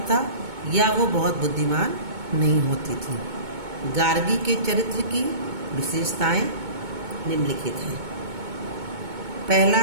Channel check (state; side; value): late; left; 2.2 ms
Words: था या वो बहुत बुद्धिमान नहीं होती थी। गार्गी के चरित्र की विशेषताएं निम्नलिखित हैं। पहला